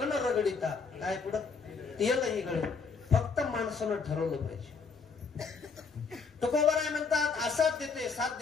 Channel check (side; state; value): right; quieter; 5.1 dB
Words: रगडिता, काय पुढं तेलही गळे. फक्त माणसानं ठरवलं पाहिजे. तुकोबाराय म्हणतात असाध्य ते